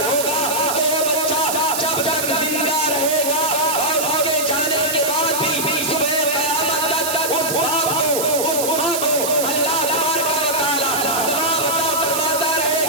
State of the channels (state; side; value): noise; right; hiss, 3 dB below the sound